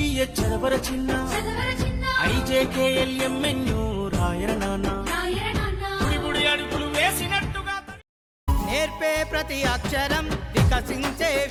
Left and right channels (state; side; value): identical; both; correlation 1.00